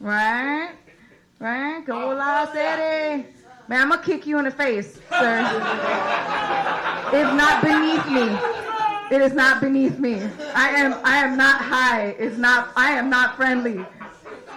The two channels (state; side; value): identical; both; correlation 1.00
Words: Go la city. Man, I'm gonna kick you in the face, sir. It's not beneath me. It is not beneath me. I am not high. I am not friendly.